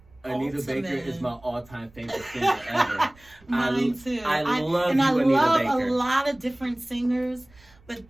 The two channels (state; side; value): noise; right; rumble, 28 dB below the sound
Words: Anita Baker is my all-time favorite singer ever. Mine too. I love and you, I Anita love Baker. a lot of different singers,